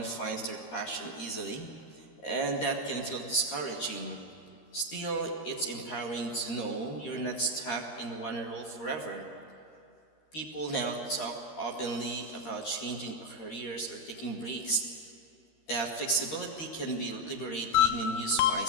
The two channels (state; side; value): late; right; 13 ms